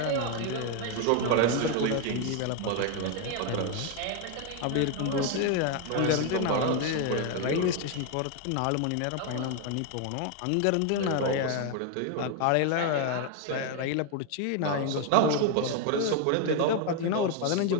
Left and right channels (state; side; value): different; both; correlation 0.01